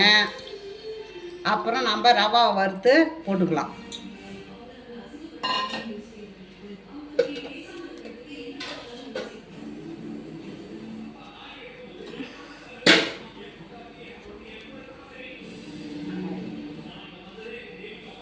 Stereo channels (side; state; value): both; identical; correlation 1.00